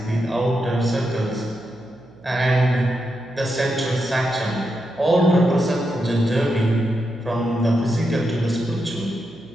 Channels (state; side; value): noise; right; hum, 24 dB below the sound